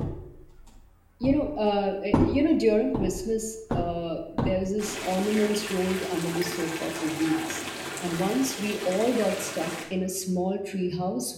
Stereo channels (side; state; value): both; identical; correlation 1.00